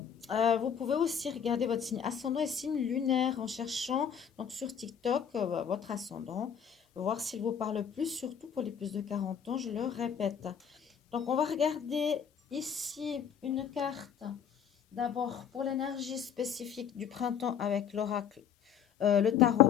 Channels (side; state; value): right; quieter; 8.0 dB